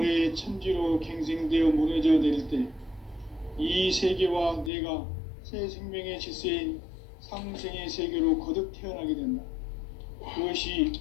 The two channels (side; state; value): right; drops out; at 4.7 s